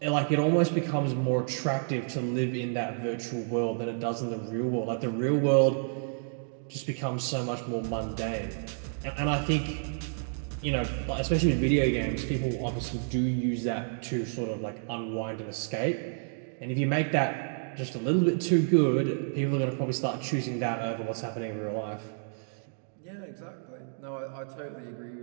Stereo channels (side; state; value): left; silent; digital silence